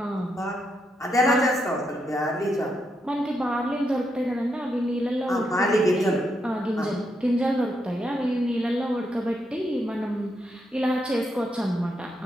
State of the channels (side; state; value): both; normal; correlation 0.81